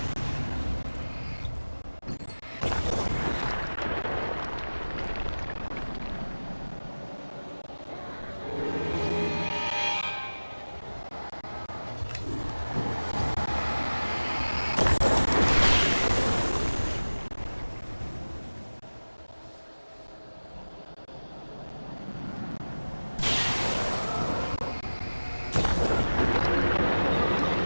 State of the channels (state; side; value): inverted; both; correlation -1.00